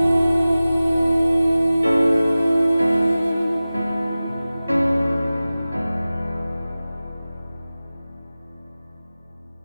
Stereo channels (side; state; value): both; inverted; correlation -0.97